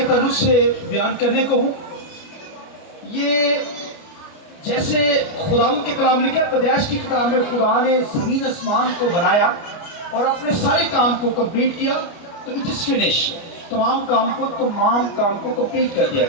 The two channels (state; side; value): late; right; 29 ms